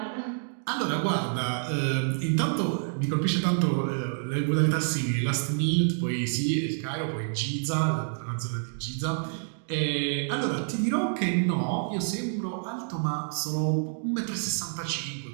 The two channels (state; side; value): silent; left; digital silence